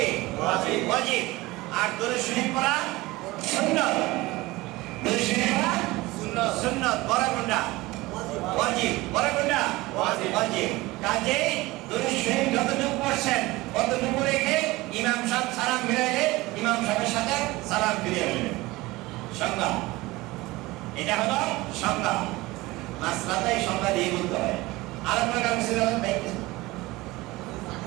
ওয়াজিব, আর দরুদ শরীফ পড়া সুন্নাত। দরুদ শরীফ পড়া সুন্নাত। বড় কোনটা? ওয়াজিব। বড় কোনটা? ওয়াজিব। কাজেই দরুদ শরীফ যতটুকু পড়ছেন ততটুকু রেখে ইমাম সাহেব সালাম ফিরাইলে ইমাম সাহেবের সাথে সালাম ফিরিয়ে নেবেন। সংজ্ঞা, এটা হলো সংজ্ঞা। মাসলাটাই সংজ্ঞা দিয়ে বলতে হয়। আর আপনার কাছে ছিল ভাই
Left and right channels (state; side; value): quieter; left; 20.3 dB